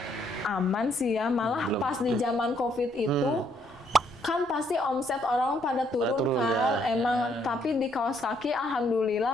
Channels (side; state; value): both; normal; correlation 0.70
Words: aman sih ya, malah pas di zaman COVID itu kan pasti omset orang pada turun kan, emang. Tapi di kaos kaki